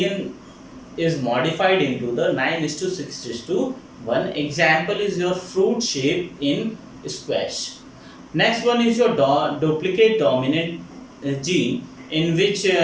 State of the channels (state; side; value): identical; both; correlation 1.00